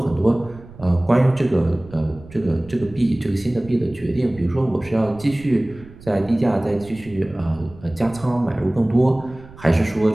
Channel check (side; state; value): right; noise; rumble, 20 dB below the sound